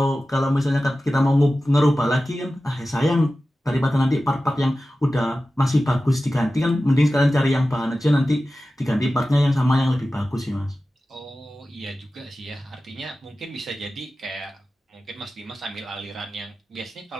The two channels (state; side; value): normal; both; correlation 0.95